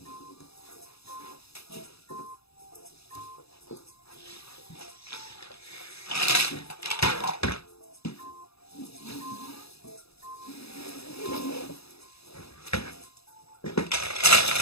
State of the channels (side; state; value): right; late; 0.78 ms